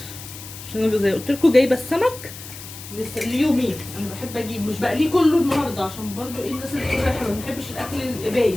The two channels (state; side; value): noise; left; hiss, 14 dB below the sound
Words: عشان انا زي قلت لكم جايبه السمك ليومين. انا بحب اجيب مش بقليه كله النهارده، عشان برضو ايه الناس اللي بتقول احنا ما بنحبش الاكل القبايه.